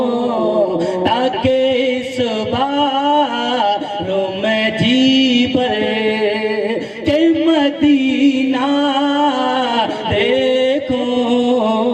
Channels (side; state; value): both; identical; correlation 1.00